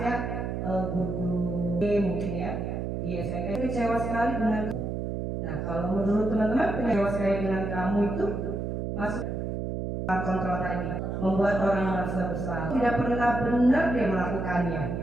ya, guru-guru mungkin ya di SMP. Kecewa sekali dengan. Nah, kalau menurut teman-teman kecewa sekali dengan kamu itu masuk kontrol tadi, membuat orang merasa bersalah, tidak pernah benar dia melakukannya.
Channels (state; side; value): noise; right; hum, 3 dB below the sound